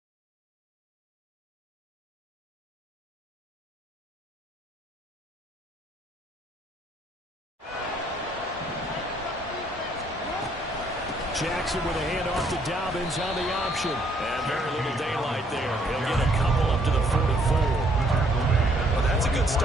Jackson with a handoff to Dobbins on the option. And very little daylight there. He'll get a couple up to the 44. Well, that's a good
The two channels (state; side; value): normal; both; correlation 0.66